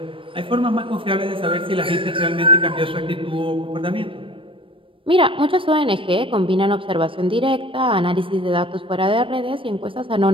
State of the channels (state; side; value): late; left; 0.25 ms